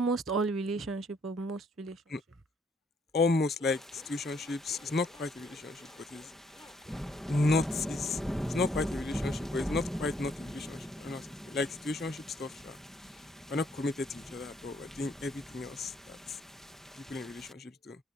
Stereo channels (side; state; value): both; normal; correlation 0.68